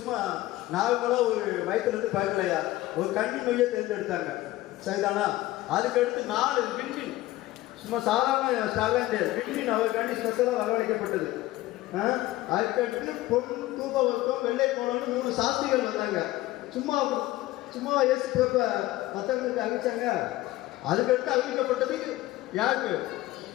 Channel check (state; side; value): quieter; right; 16.8 dB